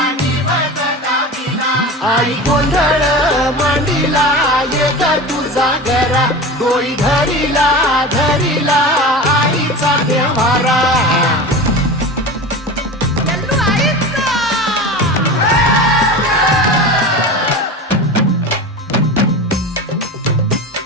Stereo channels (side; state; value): both; normal; correlation 0.30